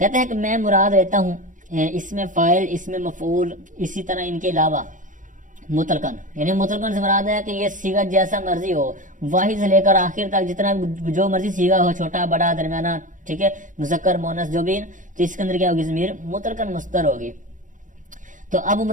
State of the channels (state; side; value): late; left; 0.37 ms